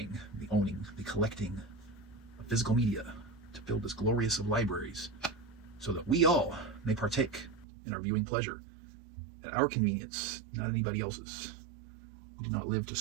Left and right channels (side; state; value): left; drops out; at 7.7 s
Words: the owning, the collecting of physical media to build this glorious of libraries so that we all may partake in our viewing pleasure at our convenience, not anybody else's. We do not live to